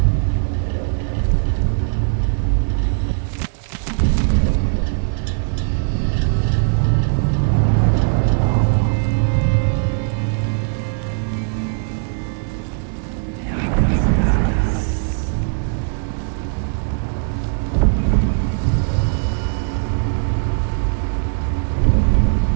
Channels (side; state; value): left; silent; digital silence